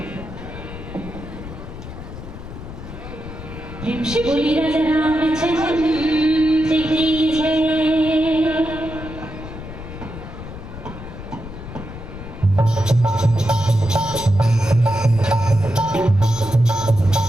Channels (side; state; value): left; noise; rumble, 11 dB below the sound